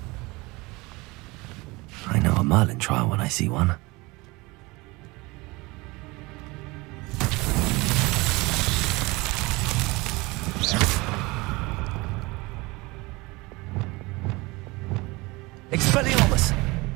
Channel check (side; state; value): left; quieter; 23.6 dB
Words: I know a Merlin trial when I see one. Expelliarmus!